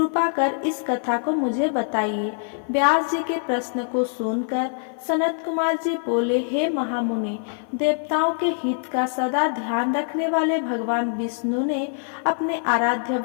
कर इस कथा को मुझे बताइए। व्यास जी के प्रश्न को सुनकर सनत कुमार जी बोले, हे महामुनि, देवताओं के हित का सदा ध्यान रखने वाले भगवान विष्णु ने अपने आराध्य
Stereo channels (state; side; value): silent; right; 55 dB below the other